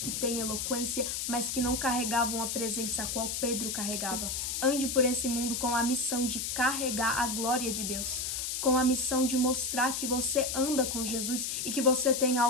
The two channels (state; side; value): noise; left; hiss, 2 dB below the sound